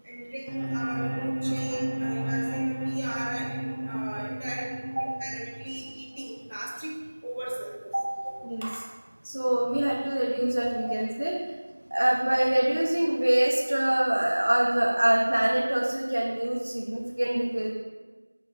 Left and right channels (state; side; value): inverted; both; correlation -1.00